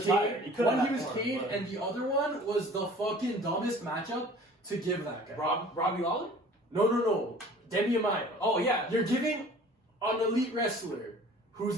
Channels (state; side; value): normal; both; correlation 0.47